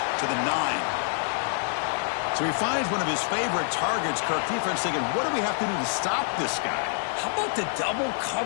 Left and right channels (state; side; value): silent; right; digital silence